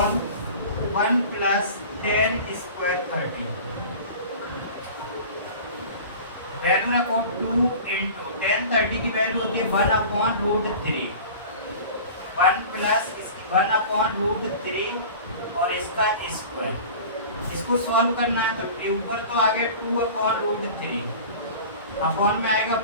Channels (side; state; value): both; inverted; correlation -0.39